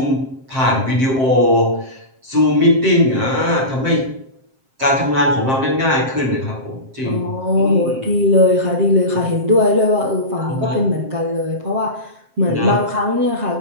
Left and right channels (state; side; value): late; left; 7.6 ms